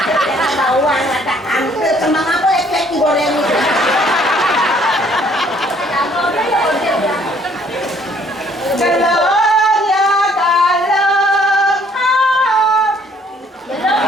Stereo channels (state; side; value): normal; both; correlation 0.62